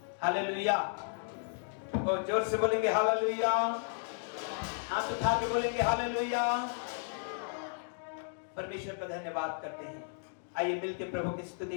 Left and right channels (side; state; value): right; silent; digital silence